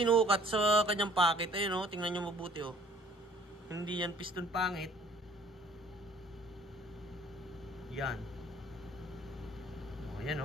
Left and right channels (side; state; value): both; normal; correlation 0.55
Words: sa kanyang pocket. Ayun o, tingnan nyo mabuti o. Hindi yan piston pangit. Yan. O, yan